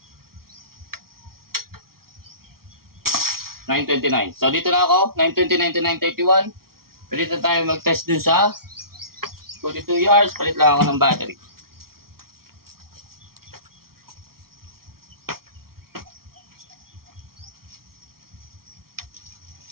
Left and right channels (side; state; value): left; late; 0.94 ms